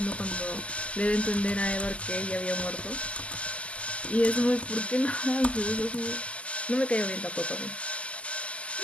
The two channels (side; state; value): right; late; 0.060 ms